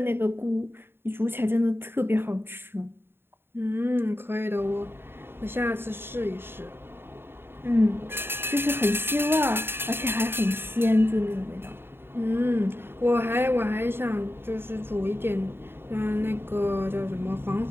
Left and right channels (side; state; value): left; late; 0.11 ms